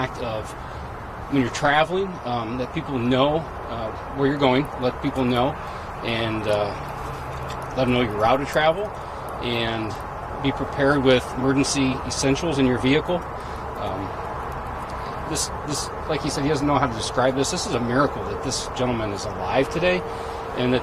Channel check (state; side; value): identical; both; correlation 1.00